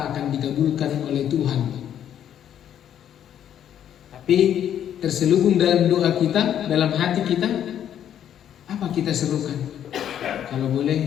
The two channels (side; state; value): right; quieter; 10.0 dB